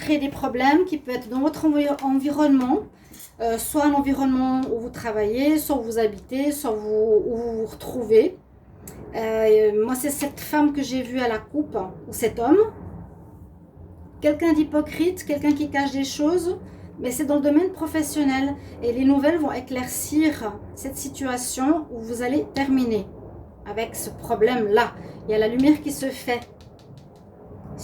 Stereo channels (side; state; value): both; identical; correlation 1.00